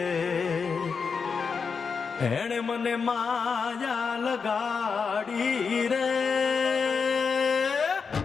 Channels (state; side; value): quieter; right; 5.5 dB